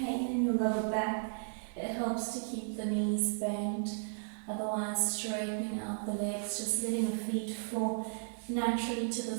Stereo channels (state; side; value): silent; left; 55 dB below the other